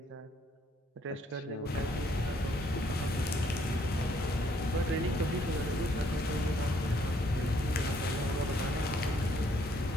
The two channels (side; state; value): both; normal; correlation 0.68